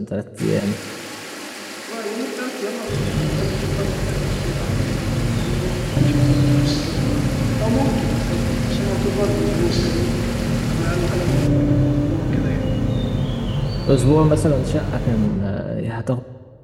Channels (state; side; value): identical; both; correlation 1.00